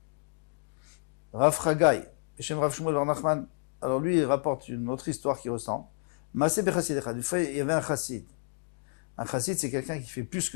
Rav Chagai, Beshem Rav Shmuel Bar Nachman, alors lui il rapporte une autre histoire qui ressemble. Maaseh bechassid echad, une fois il y avait un chassid. Un chassid c'est quelqu'un qui fait plus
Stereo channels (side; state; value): right; silent; digital silence